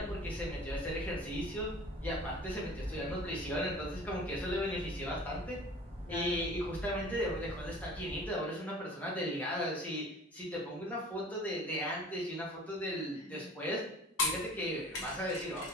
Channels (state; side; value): normal; both; correlation 0.44